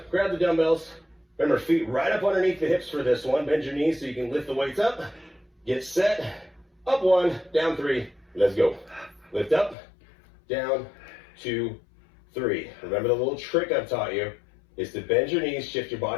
Grab the dumbbells. Remember, feet right up underneath the hips for this one. Bend your knees so you can lift the weights up. Get set. Up 1, down 3. Let's go. Lift up, down, 2, 3. Remember the little trick I've taught you is to bend your knees, shift your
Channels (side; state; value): right; drops out; at 9.8 s